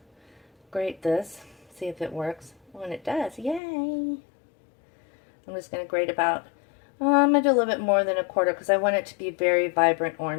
grate this, see if it works. When it does, yay! I'm just going to grate about, I'm going to do a little bit more than a quarter because I want it to be very vibrant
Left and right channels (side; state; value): right; drops out; at 3.6 s